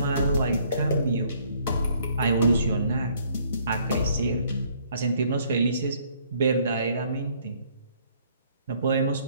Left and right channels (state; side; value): inverted; both; correlation -0.64